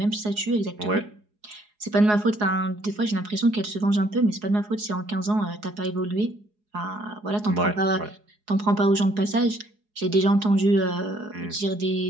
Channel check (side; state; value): left; late; 4.8 ms